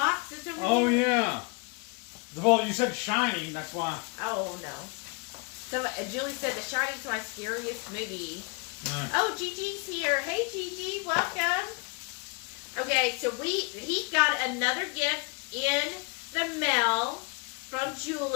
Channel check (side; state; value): right; quieter; 31.1 dB